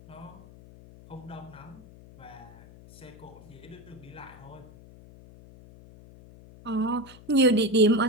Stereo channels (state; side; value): noise; left; hum, 20 dB below the sound